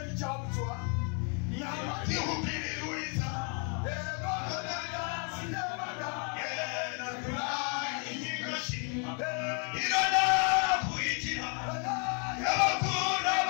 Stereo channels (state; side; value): quieter; right; 38.7 dB